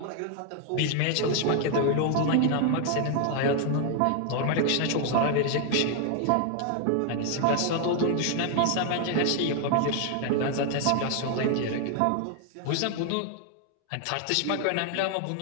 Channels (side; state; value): both; different; correlation 0.00